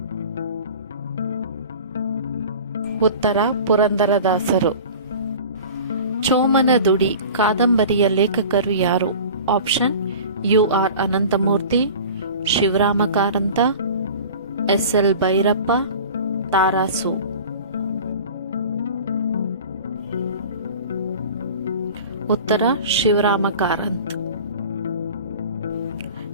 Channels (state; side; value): inverted; both; correlation -0.39